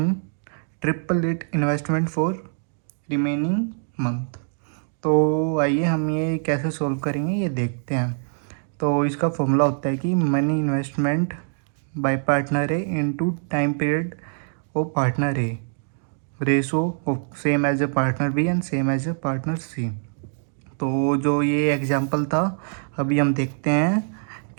triple it investment for remaining month. तो आइए हम ये कैसे सॉल्व करेंगे ये देखते हैं। तो इसका फॉर्मूला होता है कि money investment by partner A into time period of partner A ratio of same as A partner B and same as A partner C. तो जो ये एग्जांपल था अभी हम देखते हैं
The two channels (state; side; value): silent; left; digital silence